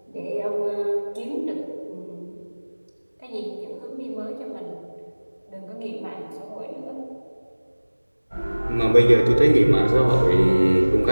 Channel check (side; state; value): both; inverted; correlation -1.00